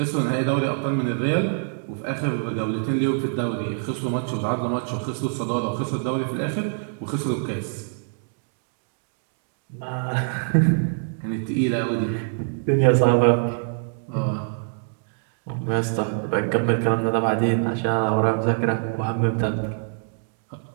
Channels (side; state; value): left; silent; digital silence